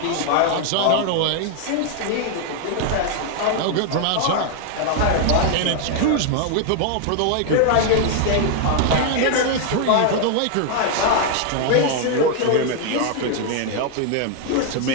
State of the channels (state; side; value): different; both; correlation 0.00